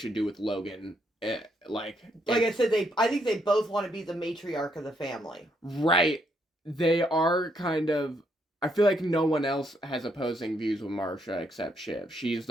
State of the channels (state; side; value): normal; both; correlation 0.74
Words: do with Logan. Like I said, I think they both want to be the matriarch of the family. Right. They are kind of... I feel like no one else has opposing views with Marcia except Shiv. She's